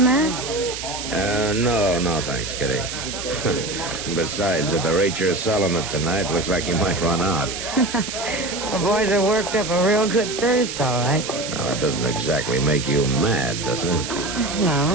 No, thanks, Kitty. Besides, at the rate you're selling it tonight, looks like you might run out. The boys are worked up a real good thirst, all right. Now, that doesn't exactly make you mad, does it?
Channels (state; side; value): noise; right; hiss, 7 dB below the sound